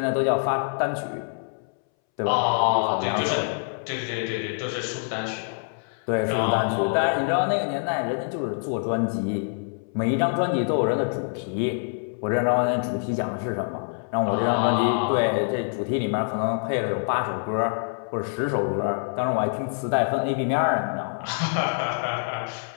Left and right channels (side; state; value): right; silent; 61 dB below the other